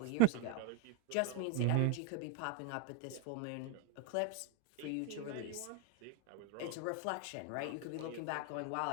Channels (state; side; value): different; both; correlation 0.01